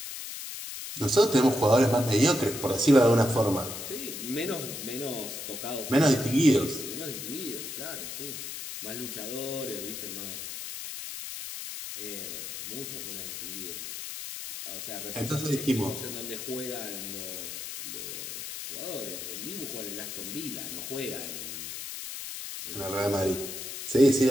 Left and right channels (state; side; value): noise; left; hiss, 7 dB below the sound